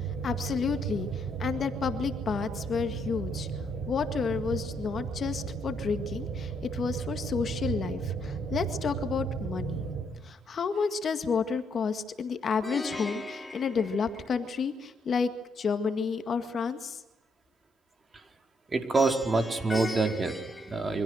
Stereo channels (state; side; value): normal; both; correlation 0.74